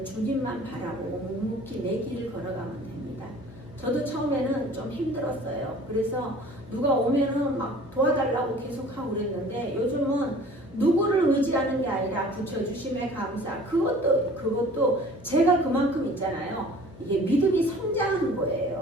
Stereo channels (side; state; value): left; noise; hum, 19 dB below the sound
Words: 주님만 바라보고 묵묵히 내 길을 걸어가면 됩니다. 저도 처음에는 좀 힘들었어요. 그래서 누가 오면은 막 도와달라고 계속 하고 그랬는데 요즘은 누구를 의지하는 게 아니라 붙여주심에 감사. 그것도 제가 그만큼 있잖아요. 이게 믿음이 성장하는